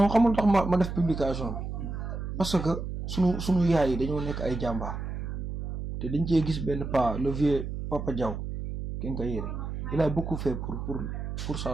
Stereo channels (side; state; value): right; noise; hum, 5 dB below the sound